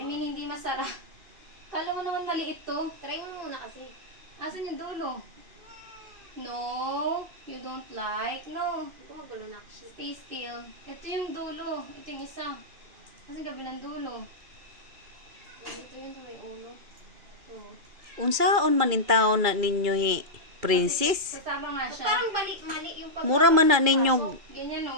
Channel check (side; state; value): left; late; 2.4 ms